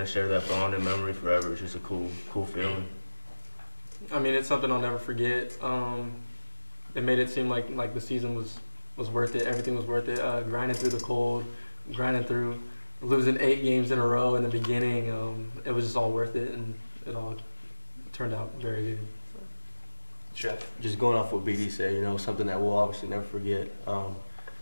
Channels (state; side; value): inverted; both; correlation -1.00